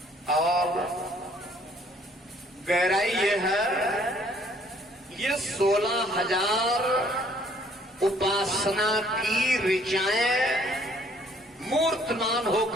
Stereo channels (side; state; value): both; normal; correlation 0.61